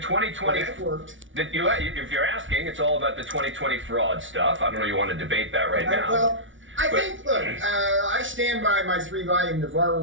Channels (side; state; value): left; late; 0.56 ms